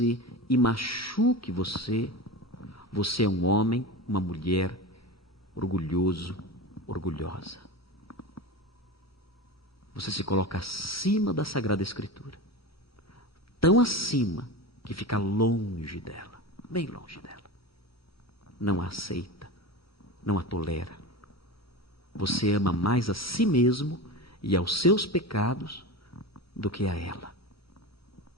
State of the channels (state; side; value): normal; both; correlation 0.26